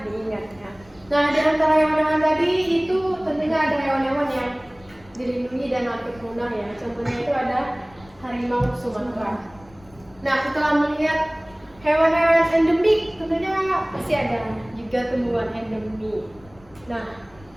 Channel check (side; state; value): left; noise; rumble, 25 dB below the sound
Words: ya. Nah, di antara hewan-hewan tadi itu tentunya ada hewan-hewan yang dilindungi dan hampir punah ya. Contohnya itu ada harimau Sumatera. Nah, setelah melihat hewan-hewan endemik, tentunya pasti ada juga tumbuhan endemik. Nah,